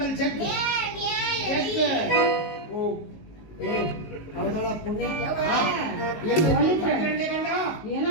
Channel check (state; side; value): late; right; 19 ms